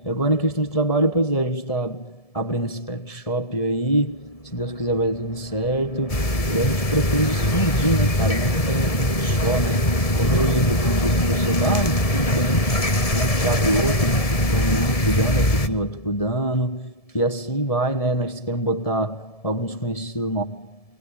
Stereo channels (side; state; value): right; late; 1.7 ms